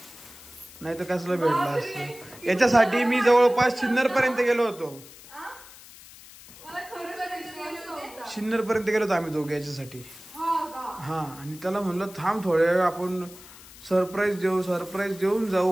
नाही तर कसलं भेटला असतं. याच्यासाठी मी जवळपास सिन्नर पर्यंत गेलो होतो. सिन्नर पर्यंत गेलो होतो आम्ही दोघे याच्यासाठी. हा, आणि त्याला म्हणलं थांब थोड्या वेळ आपण सरप्राईज देऊन जाऊ,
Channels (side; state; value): left; noise; hiss, 19 dB below the sound